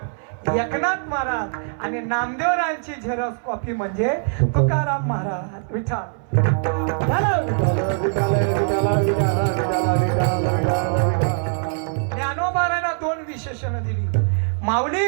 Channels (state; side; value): silent; left; 63 dB below the other